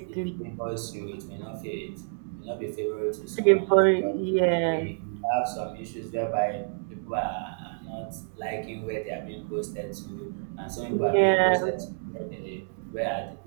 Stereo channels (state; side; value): silent; left; digital silence